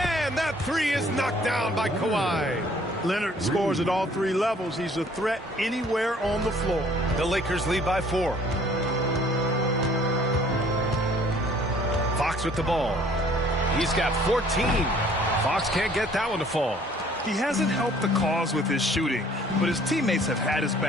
that 3 is knocked down by Kawhi. Leonard scores at all 3 levels. He's a threat anywhere on the floor. The Lakers lead by 4. Fox with the ball. He's got 14. Fox can't get that one to fall. He hasn't helped the cause with his shooting, but his teammates have had his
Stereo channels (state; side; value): normal; both; correlation 0.57